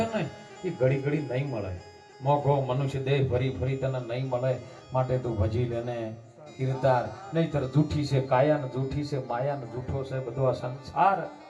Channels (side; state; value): both; identical; correlation 1.00